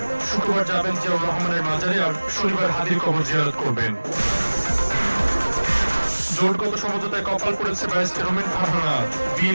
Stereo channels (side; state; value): both; inverted; correlation -1.00